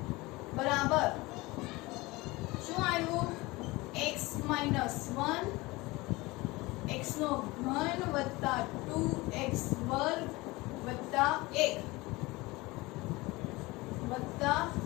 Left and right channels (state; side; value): quieter; right; 22.0 dB